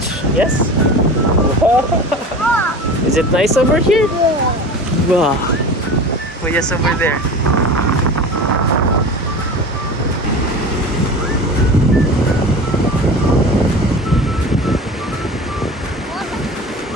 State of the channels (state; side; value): normal; both; correlation 0.34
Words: Yes? Is it nice over here? Yeah. Wow. Oh, yes, over there.